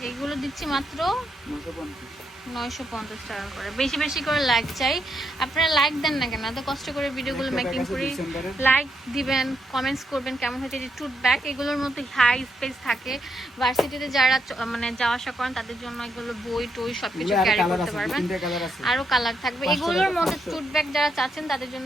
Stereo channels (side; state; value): both; normal; correlation 0.79